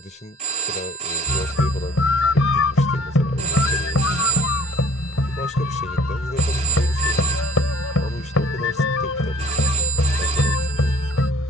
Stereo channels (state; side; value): normal; both; correlation 0.49